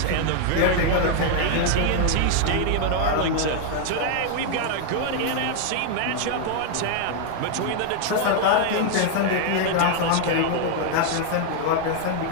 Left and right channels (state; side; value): different; both; correlation 0.00